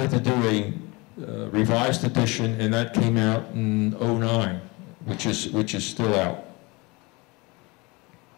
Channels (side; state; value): right; quieter; 25.5 dB